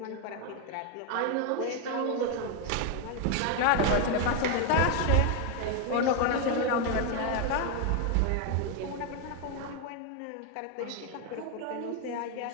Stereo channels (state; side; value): different; both; correlation 0.01